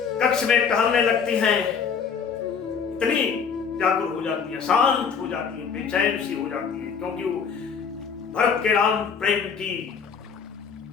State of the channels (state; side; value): quieter; right; 6.3 dB